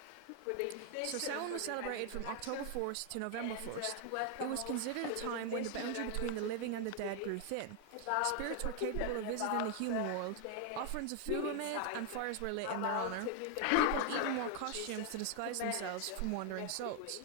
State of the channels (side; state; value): both; different; correlation 0.00